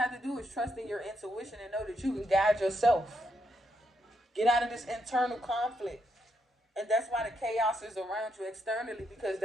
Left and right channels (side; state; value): both; normal; correlation 0.79